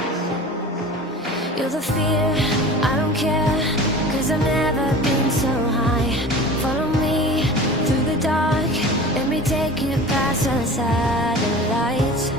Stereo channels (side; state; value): both; normal; correlation 0.37